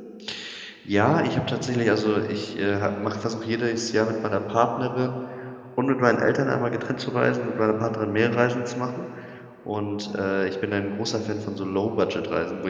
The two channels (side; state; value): both; identical; correlation 1.00